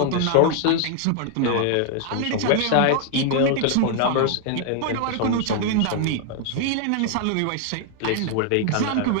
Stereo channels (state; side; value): different; both; correlation 0.00